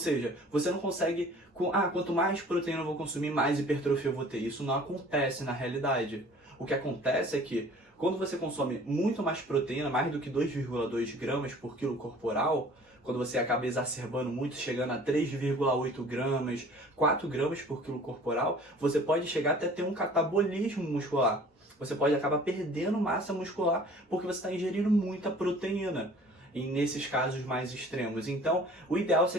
você não consegue, quanto mais proteína eu vou consumir, mais hipertrofia eu vou ter. Isso não acontece na realidade. O que acontece é que quando você consome muito mais proteína, mais do que 2,2 gramas por quilo corporal, quando você acaba exacerbando muito, chegando a 3,8 gramas, 4 gramas por quilo corporal, você pode chegar até ter um catabolismo muscular. Você pode acabar perdendo massa muscular porque você está ingerindo muita proteína, e nesses casos mais extremos. Então, o ideal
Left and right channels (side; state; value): both; normal; correlation 0.49